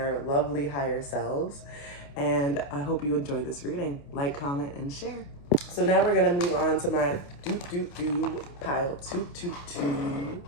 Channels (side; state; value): right; late; 28 ms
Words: lovely higher selves. And I hope you enjoy this reading. Like, comment, and share. So now we're going to move on to my pile 222s.